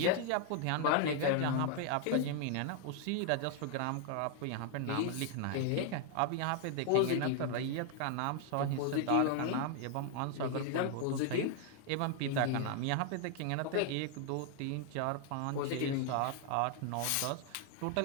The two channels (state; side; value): different; both; correlation 0.00